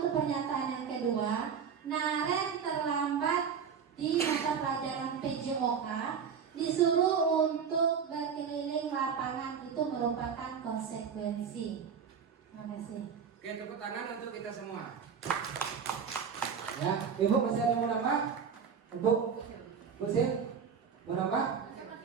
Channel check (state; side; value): quieter; left; 6.8 dB